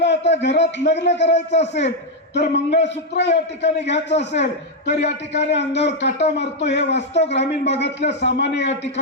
आता घरात लग्न करायचं असेल तर मंगळसूत्र या ठिकाणी घ्यायचं असेल तर या ठिकाणी अंगावर काटा मारतो। हे वास्तव ग्रामीण भागातल्या सामान्य या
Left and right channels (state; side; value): normal; both; correlation 0.01